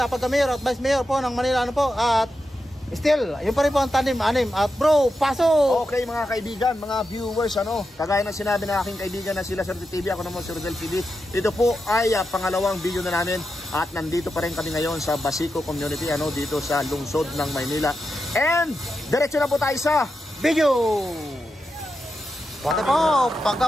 pagka-mayor at vice mayor po ng Manila ano po. At still, yun pa rin po ang tandem anim. At bro, pasok! Okay mga kaibigan, mga viewers, kagaya ng sinabi ng aking kaibigan na sila Suerte TV, ako naman si Rodel TV. Ito po ay pangalawang video na namin at nandito pa rin kami ngayon sa Basico Community, dito sa lungsod ng Maynila. And diretso na po tayo sa video! Pati po,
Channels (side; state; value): both; normal; correlation 0.88